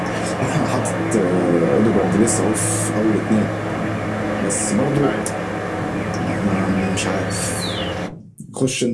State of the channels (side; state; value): both; identical; correlation 1.00